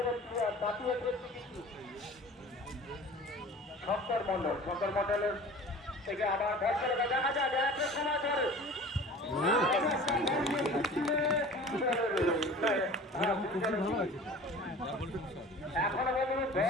প্লেয়ার জাতীয় কিন্তু শঙ্কর মন্ডলের থেকে আবার বল করে দেখা যায় একটা সময় ধরে এখনো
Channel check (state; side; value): normal; both; correlation 0.42